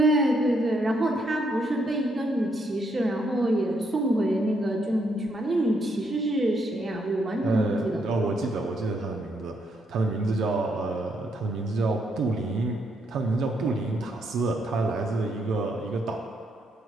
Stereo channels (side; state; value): both; normal; correlation 0.75